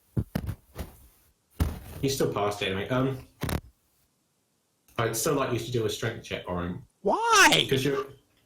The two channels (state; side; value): identical; both; correlation 1.00